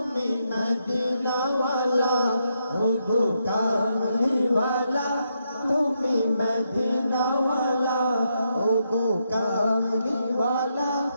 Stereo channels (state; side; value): inverted; both; correlation -0.80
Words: मदीना वाला, ओ गो कामली वाला तुम्ही मदीना वाला, ओ गो कामली वाला